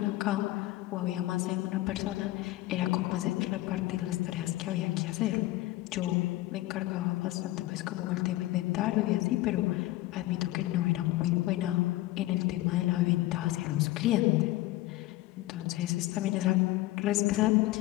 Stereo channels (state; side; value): quieter; right; 17.5 dB